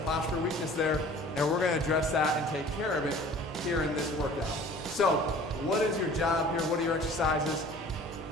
postural weakness there, and we're going to address that and take care of it here in this workout. So what is your job here? What are your exercises?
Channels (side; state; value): both; normal; correlation 0.47